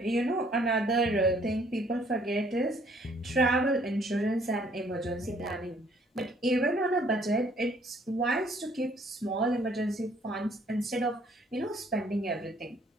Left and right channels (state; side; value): normal; both; correlation 0.62